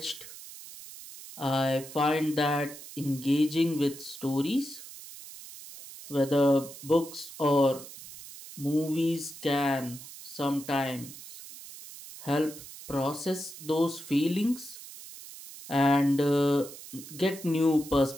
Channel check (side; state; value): right; noise; hiss, 15 dB below the sound